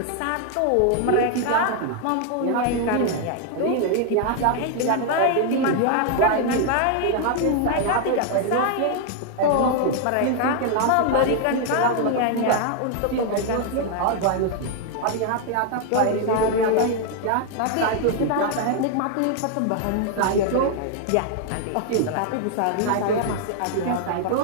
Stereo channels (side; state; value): both; different; correlation 0.00